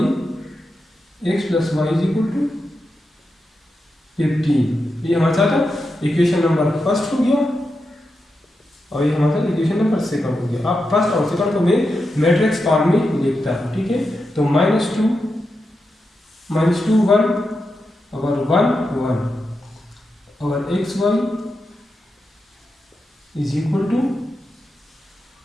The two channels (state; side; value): normal; both; correlation 0.88